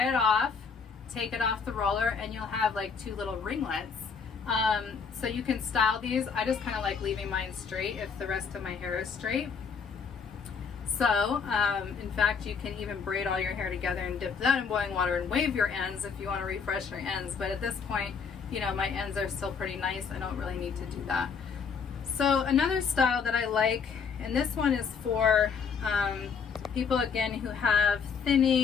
it off, take it off the roller, and you'll have like 2 little ringlets. So you can style these. I just kind of like leaving mine straight if the rest of my hair is straight. So, in fact, you can even braid all your hair together and dip that in boiling water and wave your ends if you want to refresh your ends. But at this point, you know, my ends are still pretty nice. I don't really need to do that. So another style that I like, and this one is for people, again, who have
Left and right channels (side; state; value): right; quieter; 6.0 dB